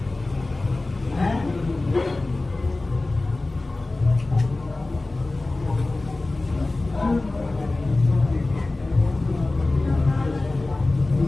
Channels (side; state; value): right; quieter; 3.0 dB